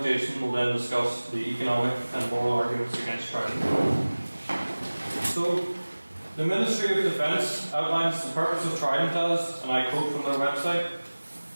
Jason, will then discuss the economic and moral arguments against Trident. So, the Ministry of Defence outlines the purpose of Trident as, and I quote from their website,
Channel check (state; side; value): inverted; both; correlation -1.00